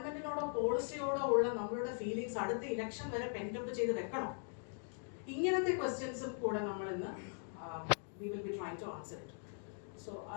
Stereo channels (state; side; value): silent; right; 51 dB below the other